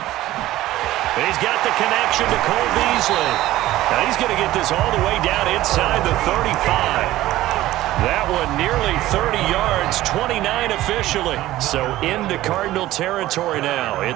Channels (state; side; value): quieter; left; 15.6 dB